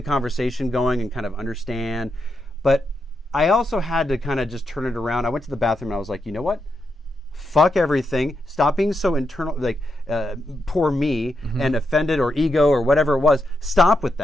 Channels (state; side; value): normal; both; correlation 0.84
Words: conversation going and kind of understand. But I also had to kind of just turn it around. I went to the bathroom and I was like, you know what? Fuck everything. Stop being so internal, like poor me and offended or ego or whatever it was. Stop with